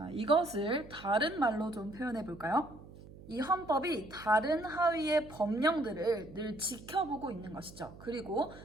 이것을 다른 말로 좀 표현해 볼까요? 이 헌법이 다른 하위의 법령들을 늘 지켜보고 있는 것이죠. 그리고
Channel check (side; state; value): right; noise; hum, 18 dB below the sound